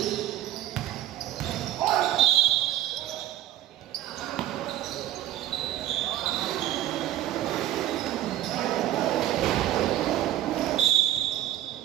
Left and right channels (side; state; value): left; quieter; 13.1 dB